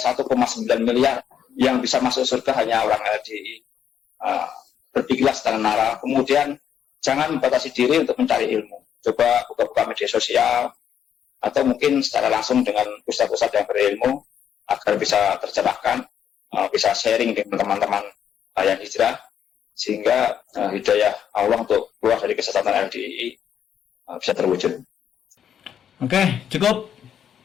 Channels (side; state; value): right; quieter; 8.9 dB